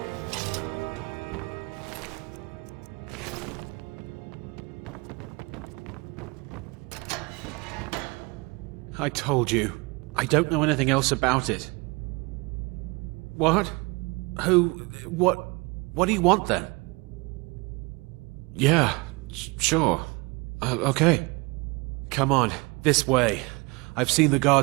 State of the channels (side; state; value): left; quieter; 26.8 dB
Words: I told you. I don't know anything else about it. What? Who? What do you want then? Yeah, sure. Okay. Come on, this way. I've seen the